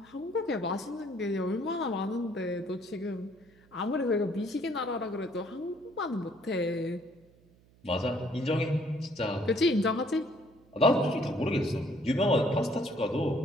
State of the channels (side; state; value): right; noise; hum, 29 dB below the sound